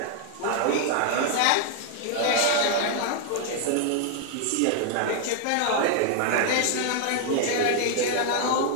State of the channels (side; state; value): both; different; correlation 0.00